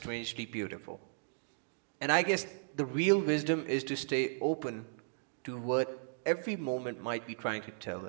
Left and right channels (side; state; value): left; silent; digital silence